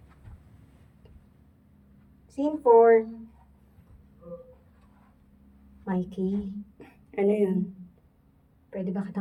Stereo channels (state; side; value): identical; both; correlation 1.00